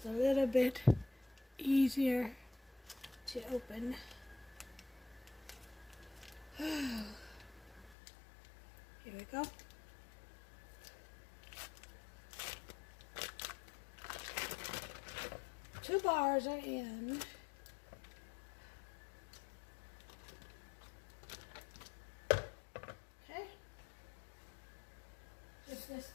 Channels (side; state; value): right; drops out; at 8.0 s